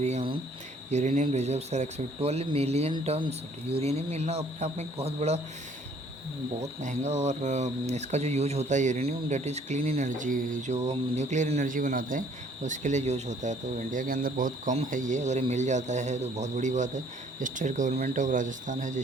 uranium reserves are expect. 12 million tonne uranium मिलना अपने आप में एक बहुत बड़ा बहुत महंगा। और इसका जो यूज होता है uranium, that is clean energy, जो हम न्यूक्लियर एनर्जी बनाते हैं उसके लिए यूज होता है। तो इंडिया के अंदर बहुत कम है ये, अगर ये मिल जाता है तो बहुत बड़ी बात है। स्टेट गवर्नमेंट ऑफ राजस्थान है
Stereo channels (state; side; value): normal; both; correlation 0.59